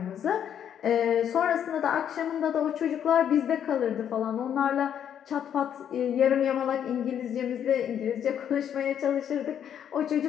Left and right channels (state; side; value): quieter; right; 9.2 dB